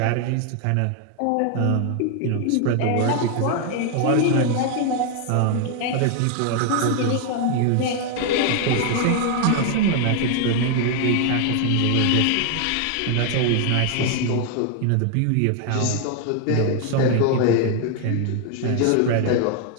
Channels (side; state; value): both; different; correlation 0.00